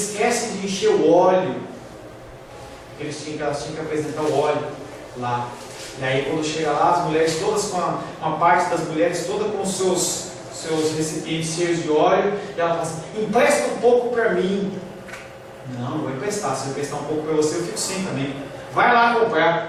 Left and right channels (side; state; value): both; identical; correlation 1.00